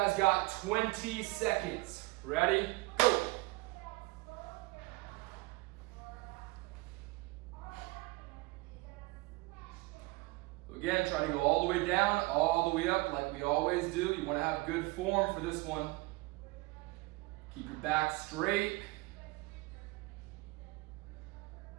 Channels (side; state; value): left; quieter; 23.6 dB